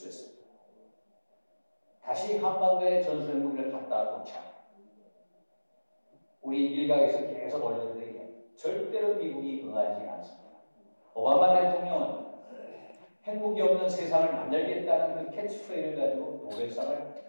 다시 한반도에 전술 핵무기를 갖다 놓자. 우리 일각에서 계속 언론들에게 절대로 미국이 응하지 않습니다. 오바마 대통령은 핵무기 없는 세상을 만들겠다는 그 캐치프레이를 가지고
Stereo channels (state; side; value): inverted; both; correlation -1.00